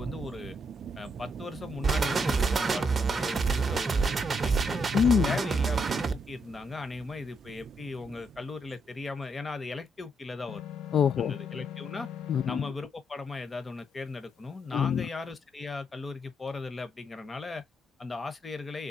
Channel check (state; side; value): normal; both; correlation 0.77